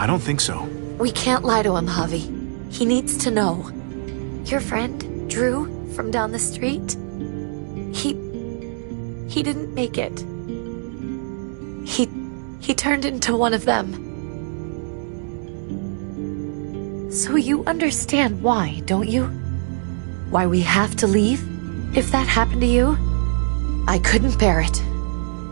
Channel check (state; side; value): silent; left; digital silence